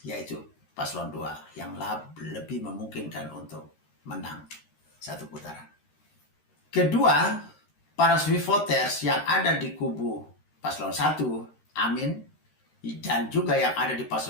yaitu paslon 2 yang lebih memungkinkan untuk menang satu putaran. Kedua, para swing voters yang ada di kubu paslon 1, Amin, dan juga yang ada di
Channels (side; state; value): right; late; 13 ms